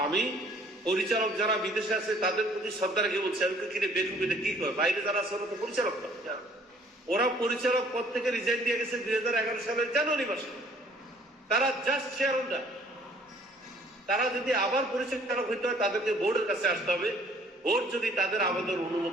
আমি পরিচালক যারা বিদেশে আছে তাদের প্রতি শ্রদ্ধা রেখে বলছে, আমি কিনে বেকুবিতে কি করে, বাইরে যারা আছে ওরা তো পরিচালক না। ওরা পরিচালক পদ থেকে রিজাইন দিয়ে গেছে 2011 সালের জানুয়ারি মাসে। তারা জাস্ট শেয়ার হোল্ডার। তারা যদি আবার পরিচালক হইতে হয় তাদেরকে বোর্ডের কাছে আসতে হবে। বোর্ড যদি তাদের আবেদন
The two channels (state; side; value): normal; both; correlation 0.58